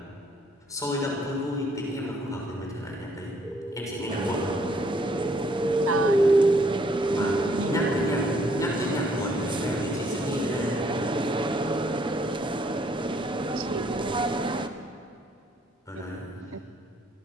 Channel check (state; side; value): normal; both; correlation 0.66